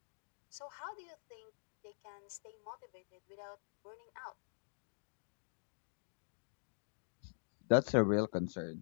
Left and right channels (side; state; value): right; silent; digital silence